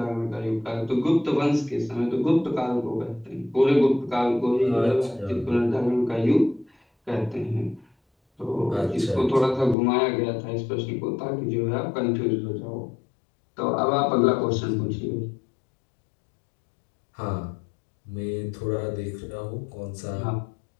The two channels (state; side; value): drops out; right; at 9.8 s